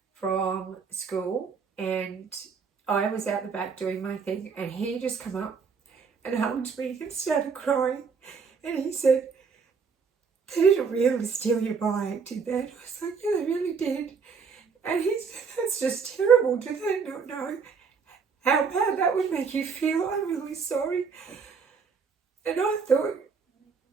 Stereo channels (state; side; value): quieter; left; 5.6 dB